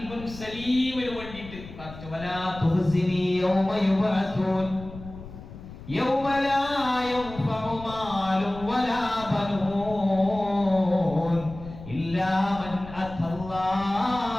സലീമിന് വേണ്ടിയിട്ട് പ്രാർത്ഥിച്ചു. വലാ തുഹ്സിനി യൗമ യുബഅസൂൻ യൗമ ലാ യൻഫഉ മാലും വലാ ബനൂൻ ഇല്ലാ മൻ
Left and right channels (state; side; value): noise; left; rumble, 15 dB below the sound